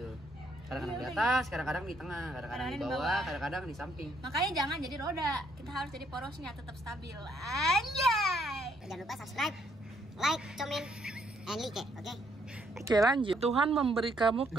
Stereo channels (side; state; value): both; normal; correlation 0.70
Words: Kadang-kadang di atas, kadang-kadang di tengah, kadang-kadang di bawah, kadang-kadang di samping. Makanya jangan jadi roda, kita harus jadi porosnya tetap stabil. Anjay. jangan lupa subscribe, like, comment, and like, oke? Oke, lanjut. Tuhan memberi kamu